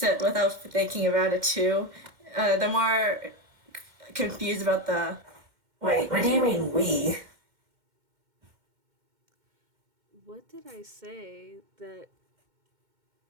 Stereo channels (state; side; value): late; left; 2.1 ms